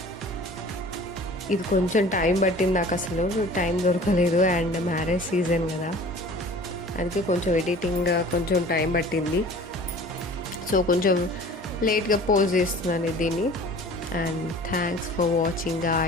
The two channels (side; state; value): both; normal; correlation 0.45